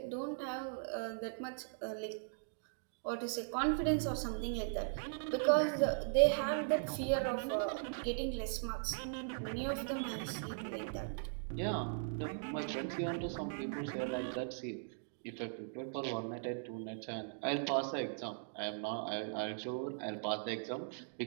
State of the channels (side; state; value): left; silent; digital silence